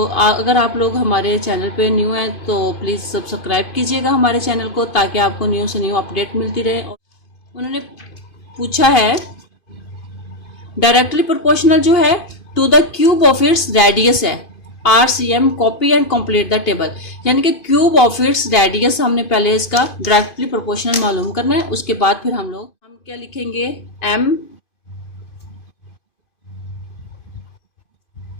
अगर आप लोग हमारे चैनल पे न्यू हैं तो प्लीज़ सब्सक्राइब कीजिएगा हमारे चैनल को, ताकि आपको न्यू से न्यू अपडेट मिलती रहे। उन्होंने पूछा है डायरेक्टली प्रोपोर्शनल जो है to the cube of its radius है। RCM copy and complete the table, यानी कि क्यूब ऑफ इट्स रेडियस हमने पहले इसका डायरेक्टली प्रोपोर्शनल मालूम करना है। उसके बाद फिर हम क्या लिखेंगे, M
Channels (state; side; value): late; right; 2.5 ms